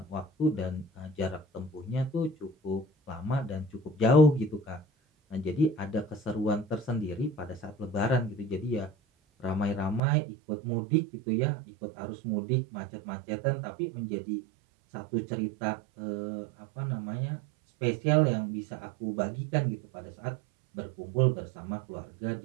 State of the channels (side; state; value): left; drops out; at 10.0 s